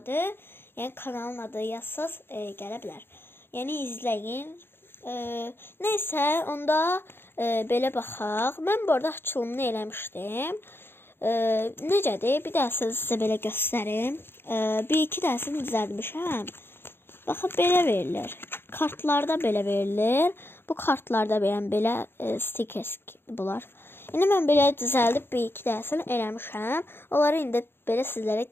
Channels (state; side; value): late; right; 0.11 ms